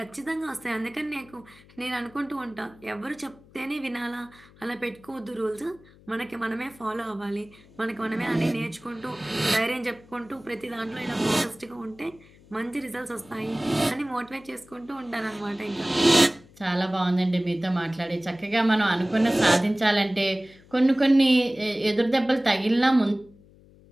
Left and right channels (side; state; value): left; noise; hum, 25 dB below the sound